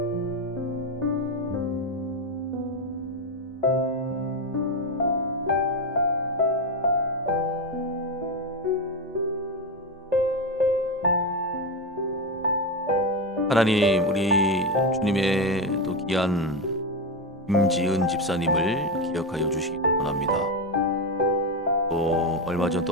하나님 우리 주님의 또 귀한 김지은 집사님을 기억하여 주시기 원합니다. 또 얼마 전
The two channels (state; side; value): normal; both; correlation 0.12